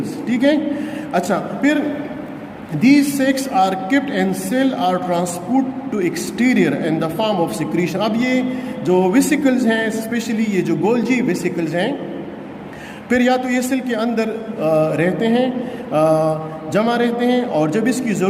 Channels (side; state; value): both; identical; correlation 1.00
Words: ٹھیک ہے. اچھا، پھر these sacs are kept and cell are transport to exterior in the form of secretion. اب یہ جو ویسیکلز ہیں، اسپیشلی یہ جو گولجی ویسیکلز ہیں، پھر یا تو یہ سیل کے اندر رہتے ہیں، جمع رہتے ہیں، اور جب اس کی